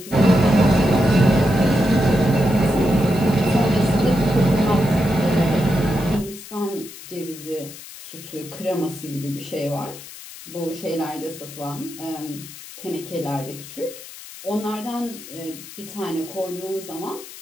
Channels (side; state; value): left; noise; hiss, 15 dB below the sound